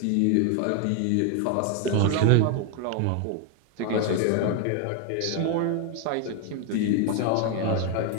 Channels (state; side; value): different; both; correlation 0.01